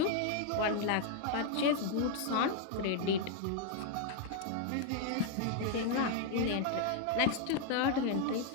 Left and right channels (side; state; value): both; different; correlation 0.00